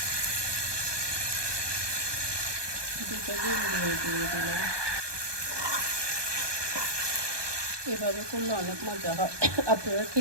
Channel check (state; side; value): late; left; 1.2 ms